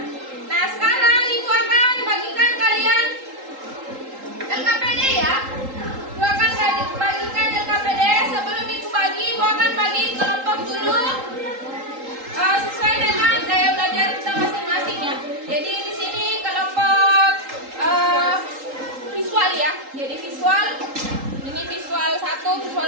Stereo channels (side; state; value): left; late; 3.8 ms